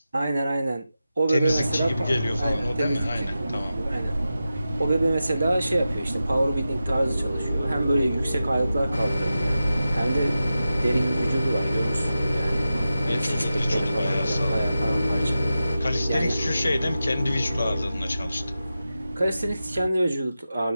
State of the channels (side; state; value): both; inverted; correlation -0.92